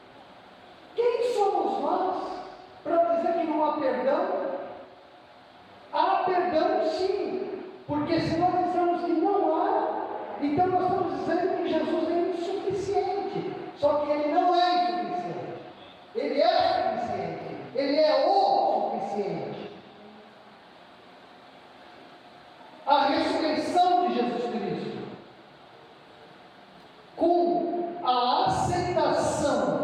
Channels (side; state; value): both; identical; correlation 1.00